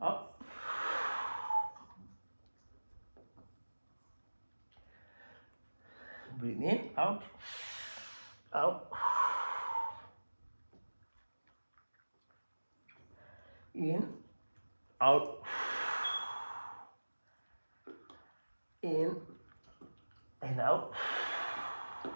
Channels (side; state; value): both; inverted; correlation -1.00